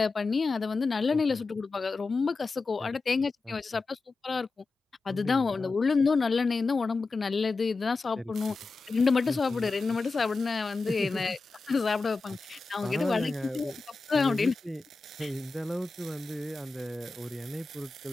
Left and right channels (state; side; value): quieter; right; 3.9 dB